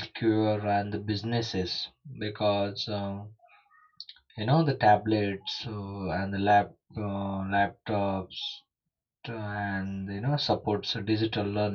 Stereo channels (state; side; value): identical; both; correlation 1.00